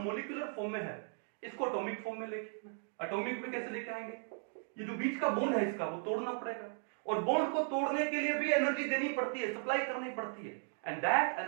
फॉर्म में है, इसको एटॉमिक फॉर्म में लेके, एटॉमिक में कैसे लेके आएंगे, ये जो बीच का बॉन्ड है इसका वो तोड़ना पड़ेगा, और बॉन्ड को तोड़ने के लिए भी एनर्जी देनी पड़ती है, सप्लाई करनी पड़ती है, and that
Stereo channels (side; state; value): left; silent; 53 dB below the other